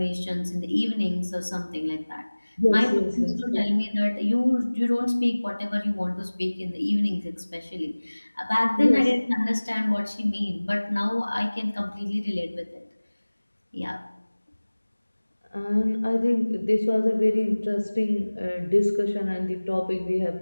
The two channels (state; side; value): inverted; both; correlation -1.00